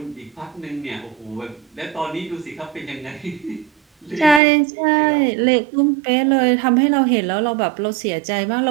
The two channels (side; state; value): left; drops out; at 4.4 s